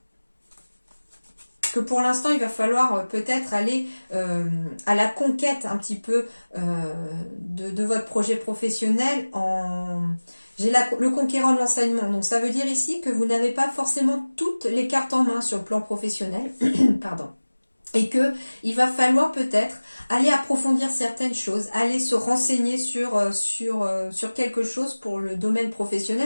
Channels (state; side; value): inverted; both; correlation -1.00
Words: Que pour l'instant, il va falloir peut-être aller à la conquête un petit peu de votre projet professionnel en... J'ai le conquérant de l'enseignement, donc ça veut dire ici que vous n'avez pas forcément toutes les cartes en main sur le plan professionnel, pardon, et que il va falloir peut-être aller approfondir certaines choses, aller se renseigner sur quelque chose pour le domaine